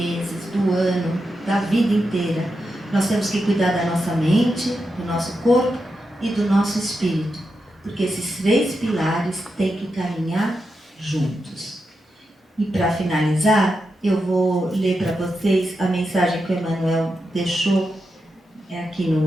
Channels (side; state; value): both; normal; correlation 0.87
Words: do ano, da vida inteira. Nós temos que cuidar da nossa mente, do nosso corpo e do nosso espírito, porque esses 3 pilares têm que caminhar juntos. E para finalizar, eu vou ler para vocês a mensagem que o Emmanuel deixou aqui